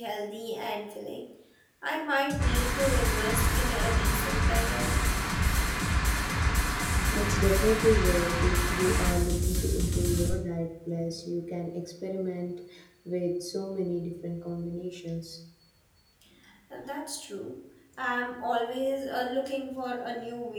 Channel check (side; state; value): both; identical; correlation 1.00